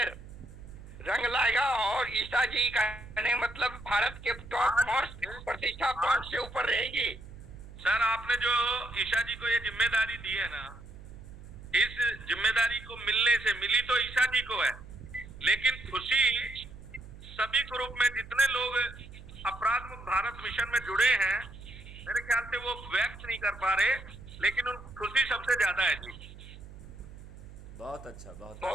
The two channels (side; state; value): right; noise; hum, 16 dB below the sound